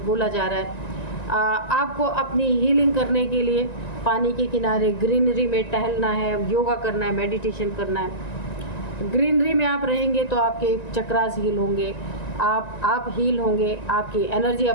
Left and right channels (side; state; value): right; late; 1.9 ms